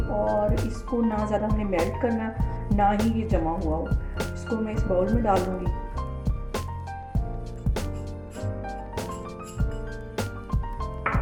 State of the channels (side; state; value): both; identical; correlation 1.00